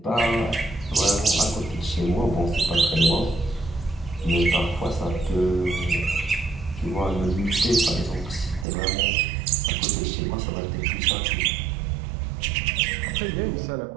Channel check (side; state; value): left; drops out; at 8.7 s